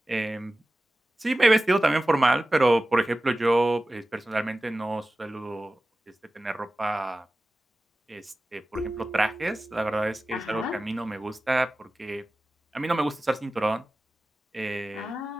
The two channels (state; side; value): normal; both; correlation 0.95